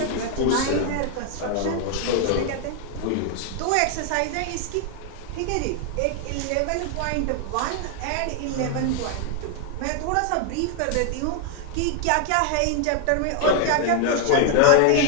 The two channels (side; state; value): both; different; correlation 0.00